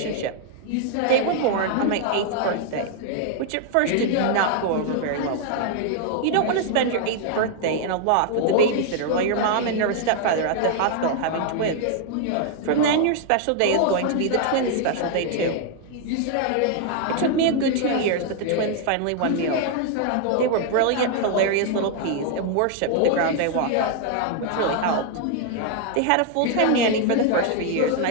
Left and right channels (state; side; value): different; both; correlation 0.00